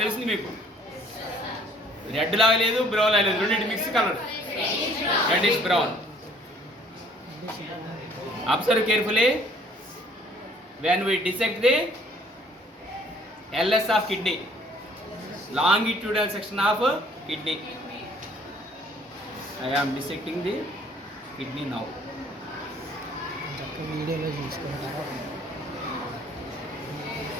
తెలిసింది మీకు. రెడ్ లాగా లేదు, బ్రౌన్ లాగా లేదు, రెండింటి mix colour. Reddish brown. Observe carefully. When we dissect the LS of kidney, longitudinal section of kidney. I am dissecting the kidney now.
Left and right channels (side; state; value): both; normal; correlation 0.58